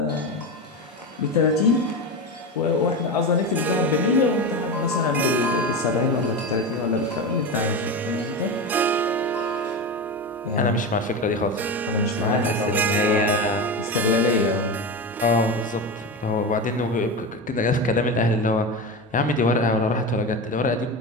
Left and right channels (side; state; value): both; normal; correlation 0.21